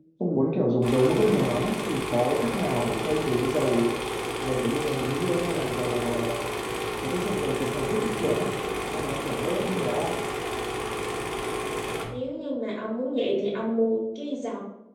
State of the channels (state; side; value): identical; both; correlation 1.00